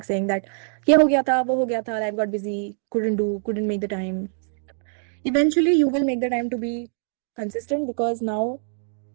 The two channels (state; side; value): silent; left; 63 dB below the other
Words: saying that, ye ho gaya tha, wo ho gaya tha, life got busy, couldn't make the time. Eventually, you will make the time to be consistent because now